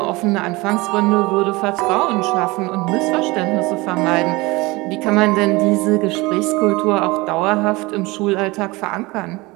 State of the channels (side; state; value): left; quieter; 22.7 dB